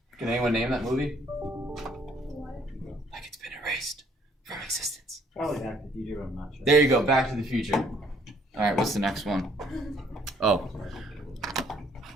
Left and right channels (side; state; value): both; normal; correlation 0.63